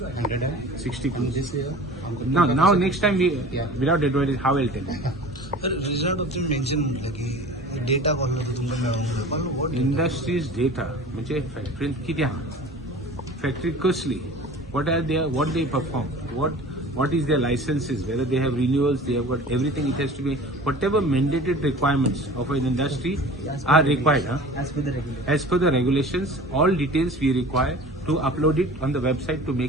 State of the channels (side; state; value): both; normal; correlation 0.40